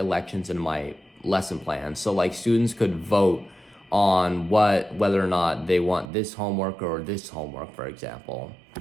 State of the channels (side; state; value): left; drops out; at 6.1 s